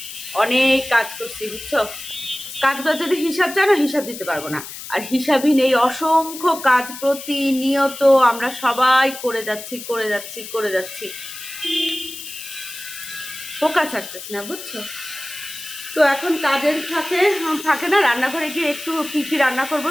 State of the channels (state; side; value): noise; left; hiss, 11 dB below the sound